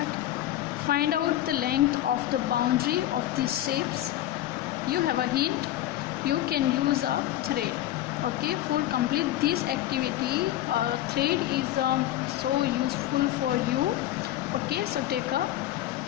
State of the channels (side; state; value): right; quieter; 13.8 dB